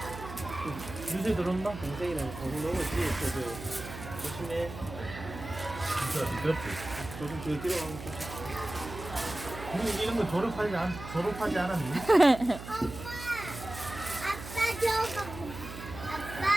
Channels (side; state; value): right; noise; hum, 12 dB below the sound